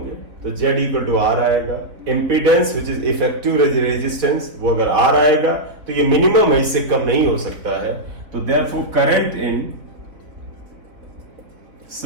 तो Z इक्वल टू R आएगा। Impedance which is effective resistance, वो अगर R आएगा तो ये मिनिमम है, इससे कम नहीं हो सकता है। तो therefore current in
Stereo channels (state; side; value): late; left; 3.8 ms